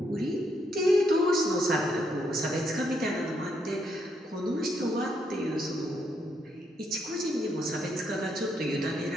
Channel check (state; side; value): normal; both; correlation 0.76